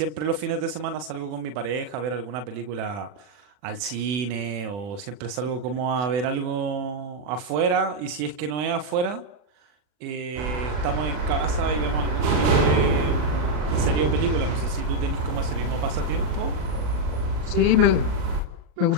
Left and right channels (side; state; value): left; late; 40 ms